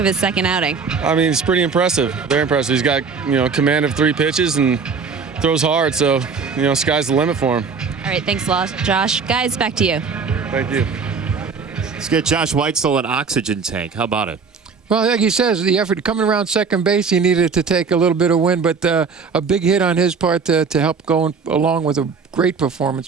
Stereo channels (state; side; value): quieter; left; 5.3 dB